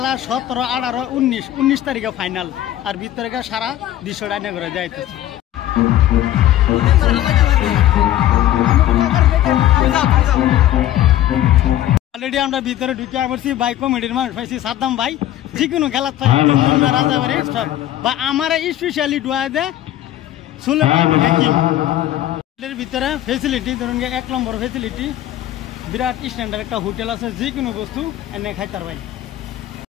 17 18 19 তারিখে ফাইনাল আর ভিতরে সারা 200 টাকা করে যাইতেছি অলরেডি আমরা ভিতরে ঢুকে পড়ছি ভাই কমিটির মানুষ পাইছি সাদ্দাম ভাই যে কোনো খেলা রাজাবাড়ি সব বা আমার স্পেশালি ডুয়া দে সুলেমান হাকিম এর ভিতরে ফেসিলিটি ধরুন 1 নম্বর ফেসিলিটি বিরাট স্ট্যান্ডার্ড একটা হোটেল আছে যে কোনো বস্তু এনে খাইতার ভাই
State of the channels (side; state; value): right; quieter; 13.0 dB